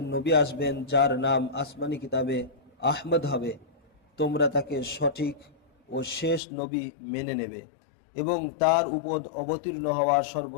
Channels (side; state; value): right; drops out; at 6.4 s